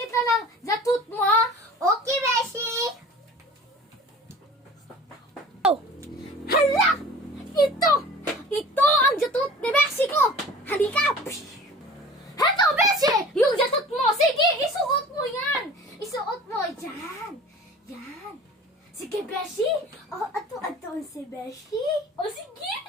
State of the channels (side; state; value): both; normal; correlation 0.43